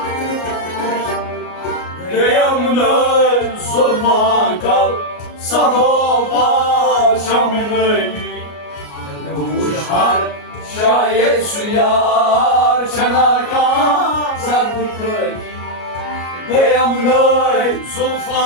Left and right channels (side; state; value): right; late; 33 ms